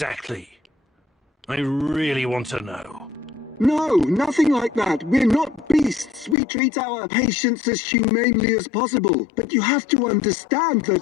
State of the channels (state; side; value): drops out; right; at 6.4 s